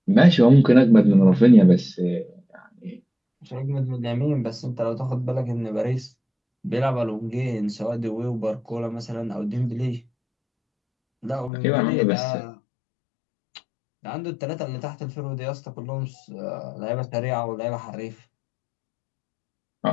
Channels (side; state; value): right; drops out; at 11.5 s